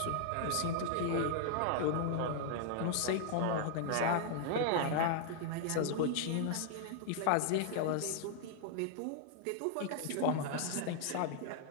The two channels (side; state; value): both; different; correlation 0.00